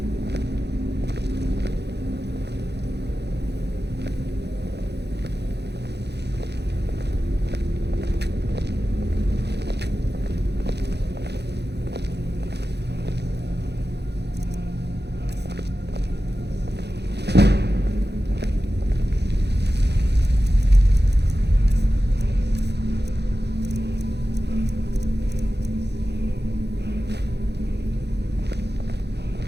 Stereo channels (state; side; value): late; left; 0.49 ms